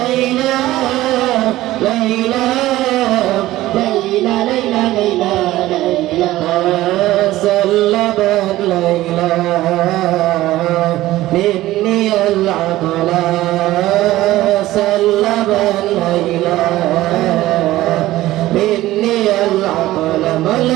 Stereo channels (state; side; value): quieter; left; 16.1 dB